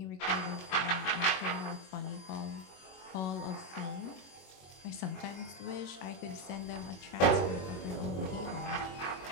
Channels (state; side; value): late; right; 21 ms